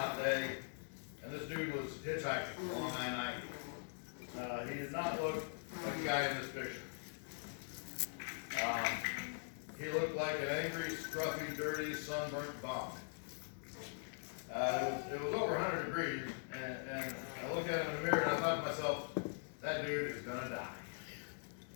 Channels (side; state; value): right; silent; digital silence